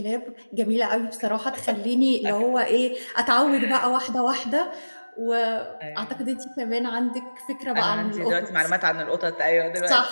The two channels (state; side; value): inverted; both; correlation -1.00